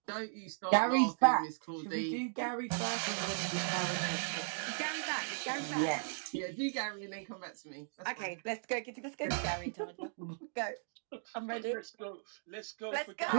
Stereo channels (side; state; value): left; silent; digital silence